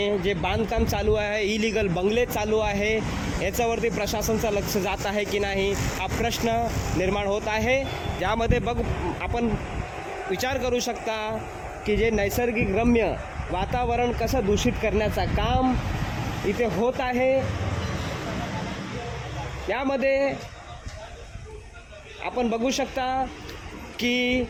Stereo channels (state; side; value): identical; both; correlation 1.00